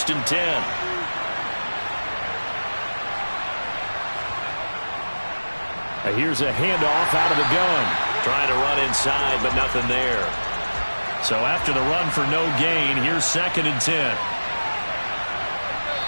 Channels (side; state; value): both; inverted; correlation -1.00